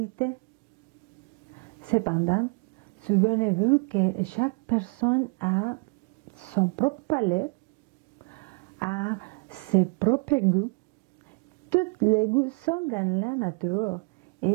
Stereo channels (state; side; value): quieter; left; 32.6 dB